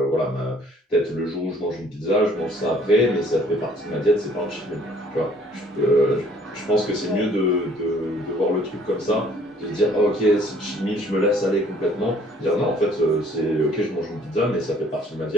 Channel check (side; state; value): both; normal; correlation 0.58